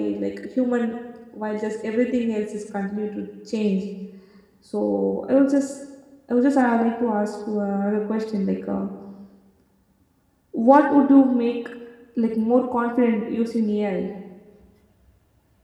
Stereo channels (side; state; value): both; identical; correlation 1.00